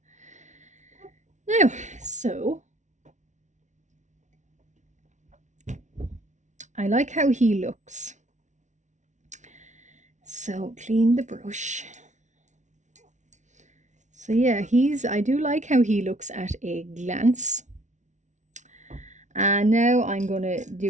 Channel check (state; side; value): late; left; 0.35 ms